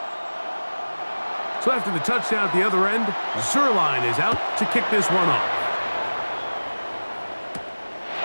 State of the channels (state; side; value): inverted; both; correlation -1.00